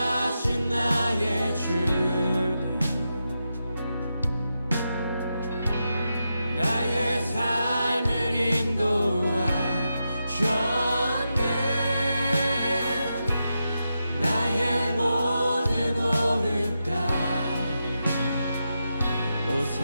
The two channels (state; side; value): inverted; both; correlation -0.87